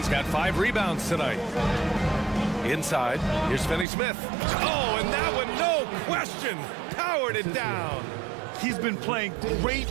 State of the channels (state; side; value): drops out; left; at 3.9 s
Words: got 5 rebounds tonight. Inside, here's Finney-Smith. Oh, and that one, no question, powered it down. He's been playing great,